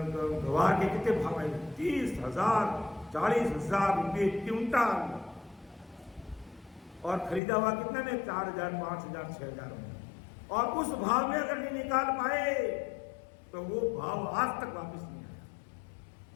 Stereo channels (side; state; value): right; drops out; at 7.4 s